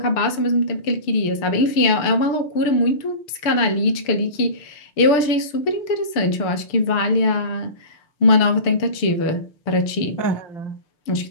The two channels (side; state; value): right; late; 6.7 ms